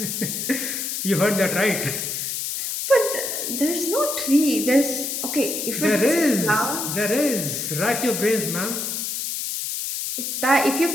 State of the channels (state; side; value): noise; left; hiss, 3 dB below the sound